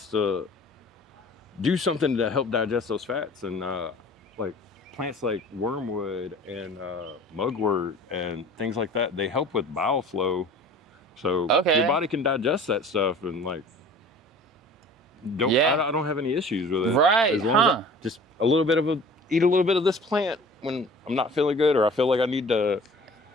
to do something to help digest those fats, and like plants like wormwood and mugwort and things like that, they help with bowel flow. So your body can digest that stuff and like I don't have any issues with it. Right. As long as I just eat a little bit of this plant when I'm not feeling good or I feel like I need to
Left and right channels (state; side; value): normal; both; correlation 0.45